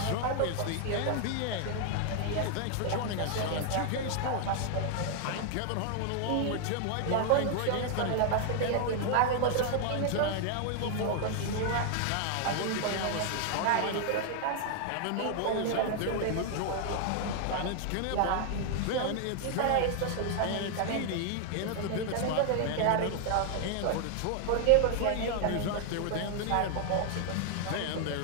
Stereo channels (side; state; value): both; different; correlation 0.00